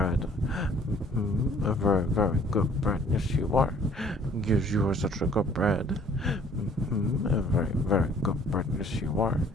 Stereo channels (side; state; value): both; normal; correlation 0.56